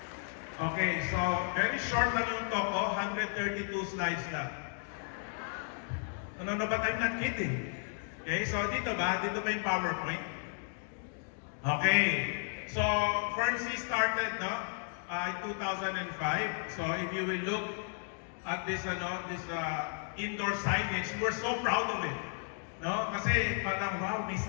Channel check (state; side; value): silent; right; 55 dB below the other